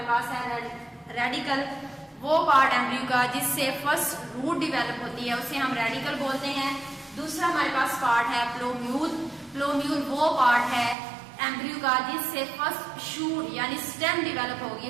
पास है रेडिकल, वो पार्ट एम्ब्रियो का जिससे फर्स्ट रूट डिवेलप होती है उसे हम रेडिकल बोलते हैं। दूसरा हमारे पास पार्ट है प्लोम्यूल। प्लोम्यूल वो पार्ट है एम्ब्रियो का जिससे फर्स्ट शूट यानी स्टेम डिवेलप होगी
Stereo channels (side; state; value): left; drops out; at 11.0 s